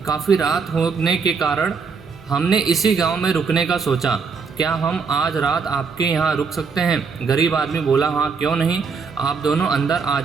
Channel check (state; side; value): quieter; left; 5.3 dB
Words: काफ़ी रात होने के कारण हमने इसी गांव में रुकने का सोचा। क्या हम आज रात आपके यहाँ रुक सकते हैं? गरीब आदमी बोला, हाँ क्यों नहीं, आप दोनों अंदर आ